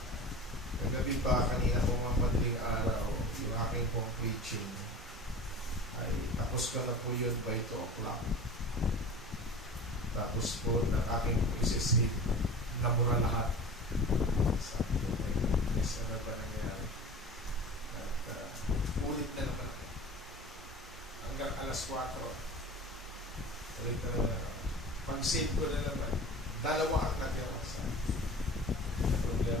kagabi pa kanina pong mga madaling araw, yung aking pong preaching ay tapos ko na po yun by 2 o'clock. Tapos po ng aking isisip nabura lahat. Sabi ko, my goodness, ano ba nangyari? At ulit na naman ako. Hanggang alas 4. Tuloy talaga. Pag-save ko na naman, dalawa ang natira sa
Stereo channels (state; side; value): normal; both; correlation 0.37